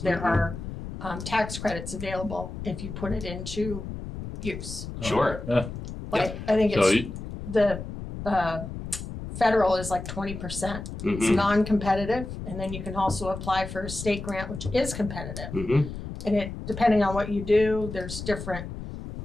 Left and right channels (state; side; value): noise; left; rumble, 9 dB below the sound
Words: there are tax credits available if you put it into use. Sure. Yeah. Like, I think So it's the federal is like 20%. It's Mhm. non-competitive, and then you can also apply for a state grant, which is competitive. Mhm. And it, depending on what you do, there's different